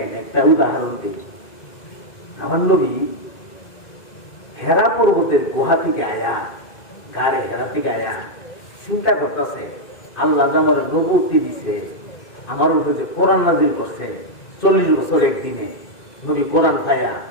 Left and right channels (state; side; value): late; right; 2.1 ms